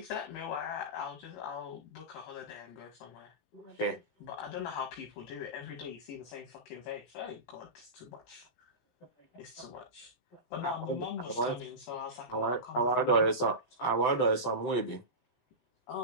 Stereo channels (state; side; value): late; right; 17 ms